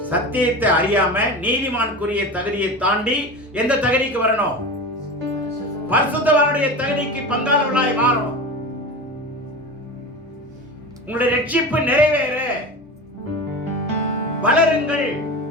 சத்தியத்தை அறியாம நீதிமானுக்குரிய தகுதியை தாண்டி எந்த தகுதிக்கு வரணும்? பரிசுத்தவானுடைய தகுதிக்கு பங்காளர்களாய் மாறணும். உங்களுடைய ரட்சிப்பு நிறைவேற வளருங்கள்,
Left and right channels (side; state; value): both; normal; correlation 0.28